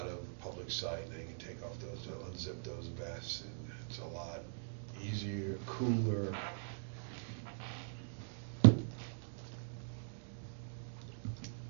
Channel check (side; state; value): left; silent; digital silence